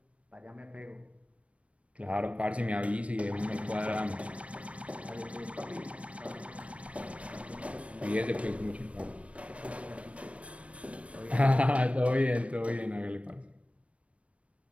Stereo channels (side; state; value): left; late; 0.063 ms